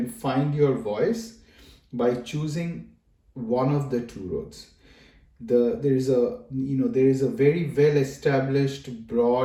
find your voice by choosing one of the two roads. There is a very well established,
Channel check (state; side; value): identical; both; correlation 1.00